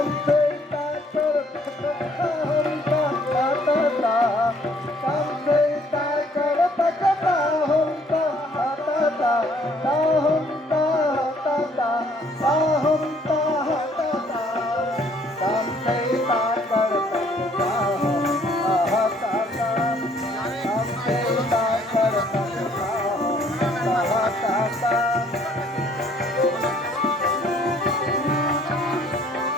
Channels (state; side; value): normal; both; correlation 0.62